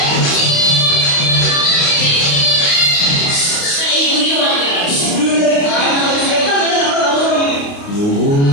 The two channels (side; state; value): right; late; 29 ms